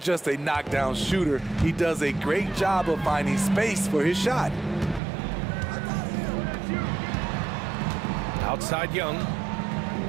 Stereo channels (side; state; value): left; drops out; at 5.0 s